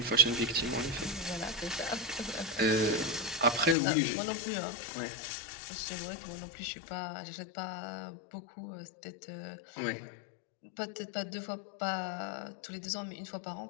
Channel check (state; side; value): drops out; right; at 3.8 s